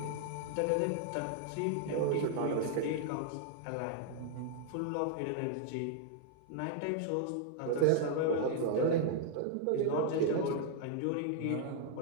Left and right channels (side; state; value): both; different; correlation 0.00